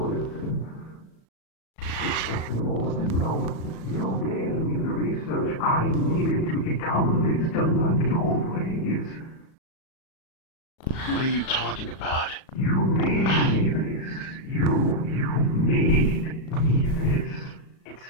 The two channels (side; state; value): right; late; 37 ms